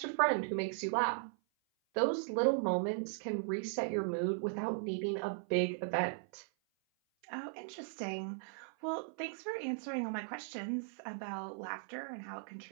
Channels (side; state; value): left; silent; 53 dB below the other